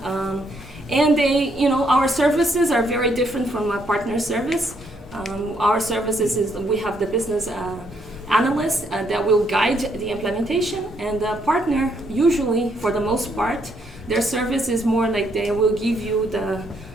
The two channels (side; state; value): both; normal; correlation 0.72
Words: And they our services are very different from a partner service. Our services is we have the business analyst that will guide the implementation, and the partner usually, for the most part, their service is more like they will give you